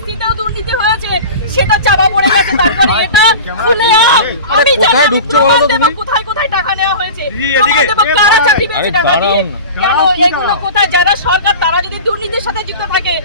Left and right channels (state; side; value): inverted; both; correlation -0.34